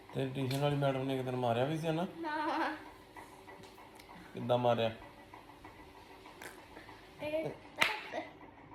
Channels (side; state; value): both; identical; correlation 1.00